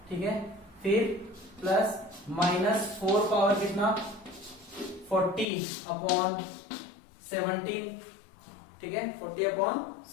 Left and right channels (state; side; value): drops out; right; at 5.5 s